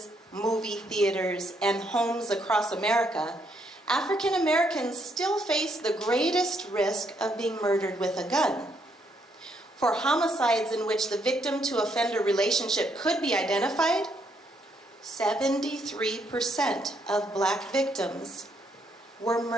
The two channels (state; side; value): normal; both; correlation 0.74